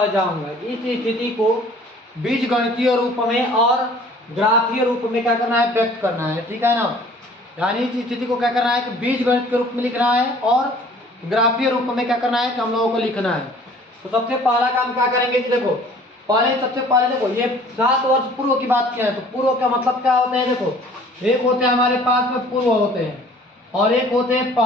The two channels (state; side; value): normal; both; correlation 0.52